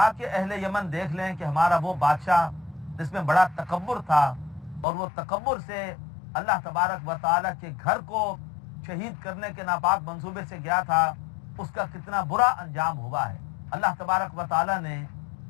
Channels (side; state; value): right; drops out; at 4.9 s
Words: اہل یمن دیکھ لیں کہ ہمارا وہ بادشاہ جس میں بڑا تکبر تھا اور وہ تکبر سے اللہ تبارک و تعالیٰ کے گھر کو شہید کرنے کے ناپاک منصوبے سے گیا تھا، اس کا کتنا برا انجام ہوا ہے۔ اللہ تبارک و تعالیٰ نے